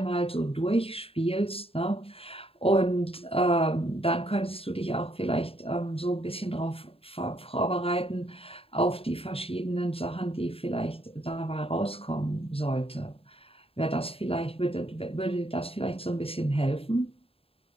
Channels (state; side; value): late; right; 0.27 ms